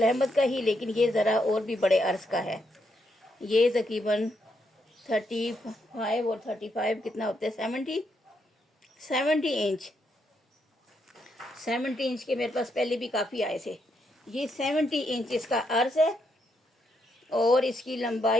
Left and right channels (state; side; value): normal; both; correlation 0.78